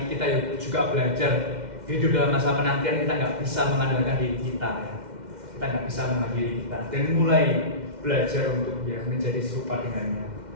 kita juga belajar hidup dalam masa penantian. Kita nggak bisa mengandalkan diri kita ya. Kita nggak bisa mengandalkan diri kita. Dan mulai belajar untuk ya menjadi serupa dengannya.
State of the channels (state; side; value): late; left; 2.1 ms